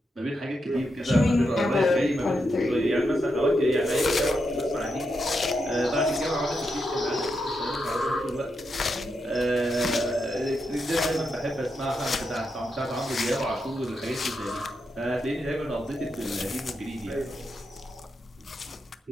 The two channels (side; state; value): both; normal; correlation 0.84